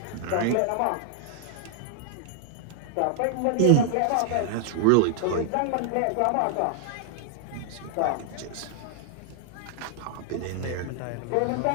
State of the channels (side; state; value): both; different; correlation -0.01